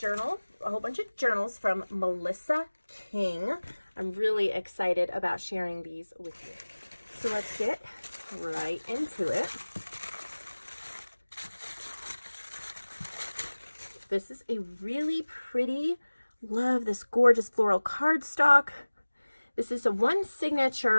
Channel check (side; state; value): both; inverted; correlation -1.00